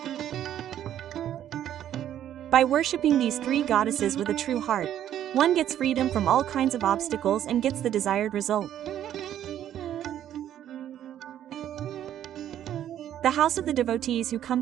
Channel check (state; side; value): quieter; left; 11.0 dB